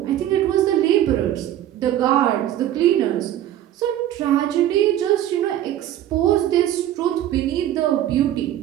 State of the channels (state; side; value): quieter; left; 12.1 dB